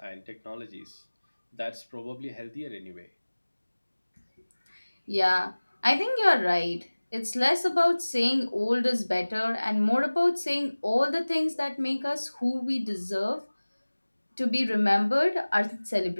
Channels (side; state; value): both; inverted; correlation -1.00